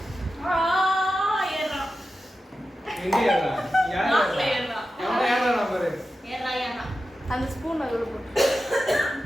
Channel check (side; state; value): both; normal; correlation 0.92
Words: ஏறா. எங்க ஏறா? யார் நாக்குல ஏறா? ஏறா. ஏறா பாரு. ஏறா. அந்த ஸ்பூன் அதுல போட்டு